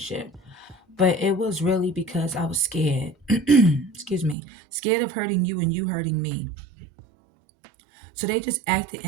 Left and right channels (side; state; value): left; drops out; at 4.4 s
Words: But it was really because I was scared. Excuse me. Scared of hurting you and you hurting me. So they just acted